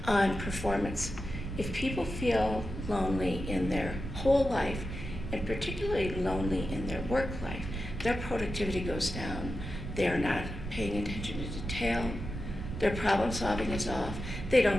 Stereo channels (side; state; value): right; noise; rumble, 7 dB below the sound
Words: on performance. If people feel lonely in their whole life, and particularly lonely in their work life, their productivity goes down. They're not paying attention to detail. Their problem solving is off. They